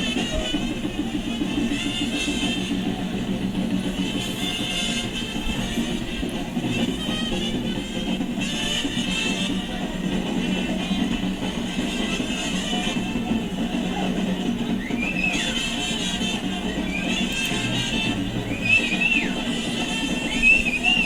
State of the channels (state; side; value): identical; both; correlation 1.00